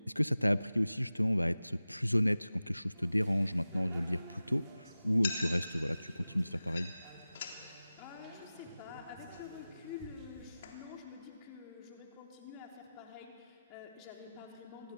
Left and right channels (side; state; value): both; inverted; correlation -0.96